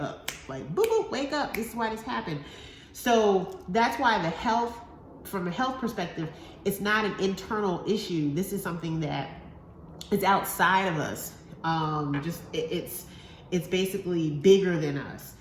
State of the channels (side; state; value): both; identical; correlation 1.00